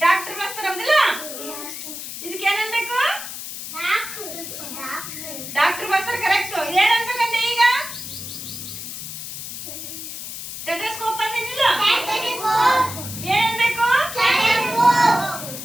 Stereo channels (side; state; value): left; noise; hiss, 9 dB below the sound